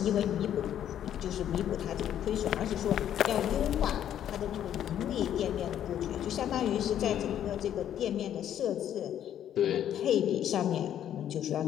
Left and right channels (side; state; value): right; quieter; 10.4 dB